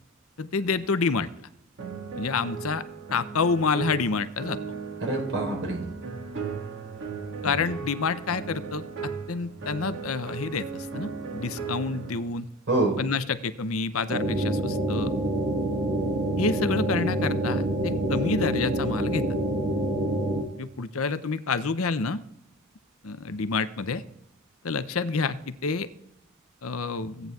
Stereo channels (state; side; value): normal; both; correlation 0.34